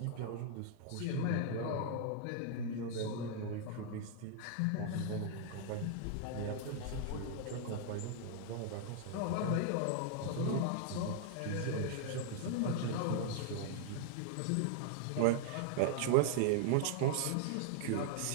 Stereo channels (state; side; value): different; both; correlation -0.01